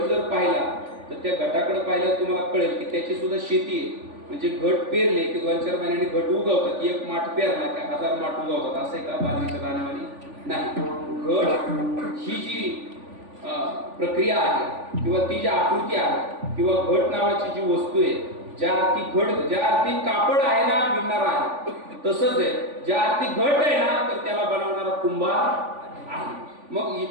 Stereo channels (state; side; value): late; left; 3.5 ms